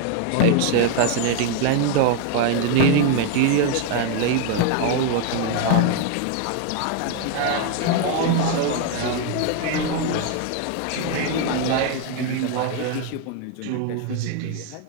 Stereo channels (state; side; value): different; both; correlation 0.01